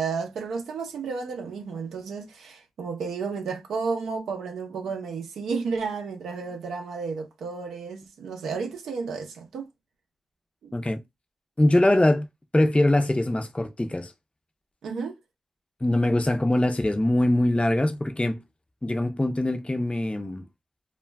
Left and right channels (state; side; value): normal; both; correlation 0.94